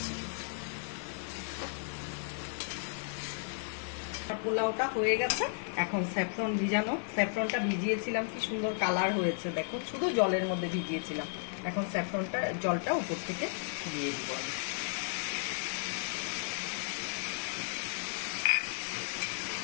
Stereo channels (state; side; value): silent; right; digital silence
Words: পোলাওটা হয়ে গেছে। এখন স্যাফরন ভিজানো, স্যাফরনটা ভিজিয়েছিলাম, কি সুন্দর কালার হয়েছে দেখো, শুধু জলের মধ্যে ভিজিয়েছিলাম। এখন স্যাফরনটা জলটা উপর থেকে দিয়ে দিব আমি।